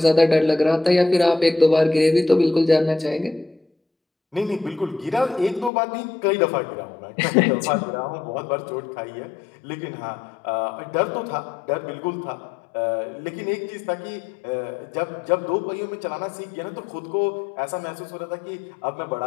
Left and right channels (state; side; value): drops out; right; at 5.7 s